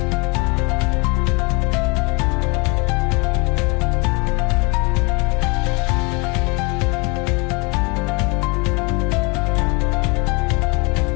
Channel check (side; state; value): right; quieter; 29.6 dB